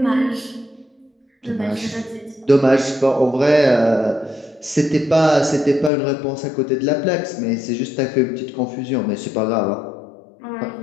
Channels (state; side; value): drops out; right; at 5.9 s